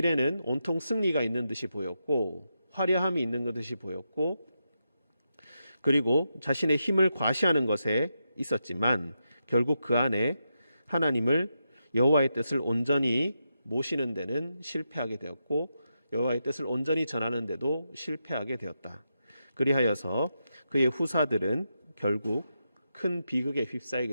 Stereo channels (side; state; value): both; inverted; correlation -0.86